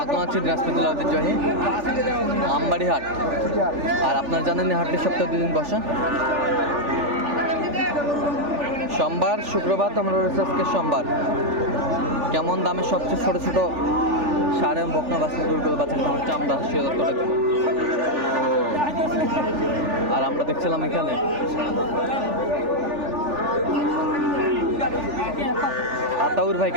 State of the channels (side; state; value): left; late; 3.4 ms